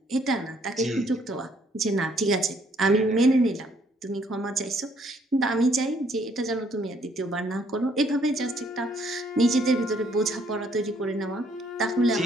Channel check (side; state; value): both; normal; correlation 0.66